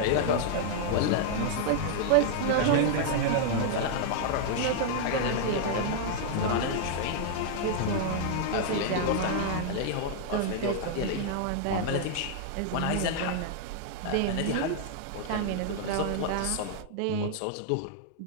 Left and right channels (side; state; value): both; different; correlation -0.01